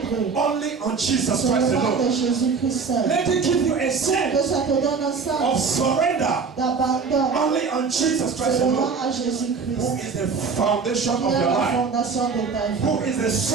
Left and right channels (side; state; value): left; quieter; 5.2 dB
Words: only on Jesus Christ seulement de alone. Jésus-Christ seul. Let it give you a Que sense ça te donne un of sens surrender d'abandon only on Jesus Christ seulement alone, à who Jésus-Christ, is the foundation qui of est your la life, fondation de ta vie, who is the